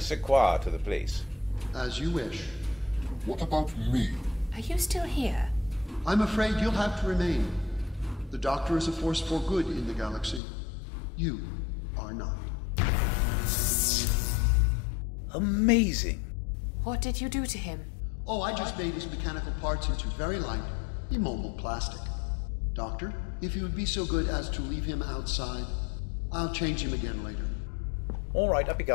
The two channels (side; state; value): right; drops out; at 10.4 s